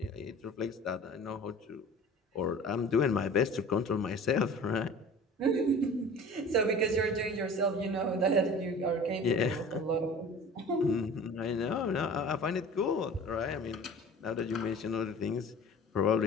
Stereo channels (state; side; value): normal; both; correlation 0.42